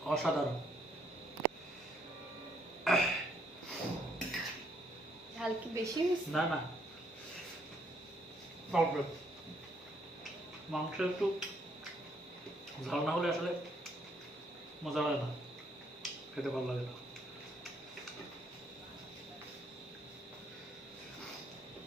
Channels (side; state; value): both; normal; correlation 0.69